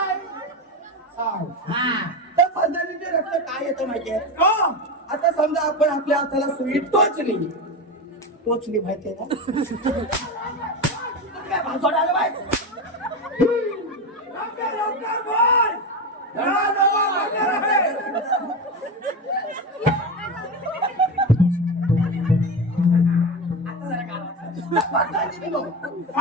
सांग तर पद्धतीचे रक्त काय येतं माहितीये आता समजा आपण आपल्या हाताला सुई टोचली माहितीये ना काय भाजवड आलं बाई लवकर बोल. राजसभा भरणार आहे.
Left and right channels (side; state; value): both; normal; correlation 0.19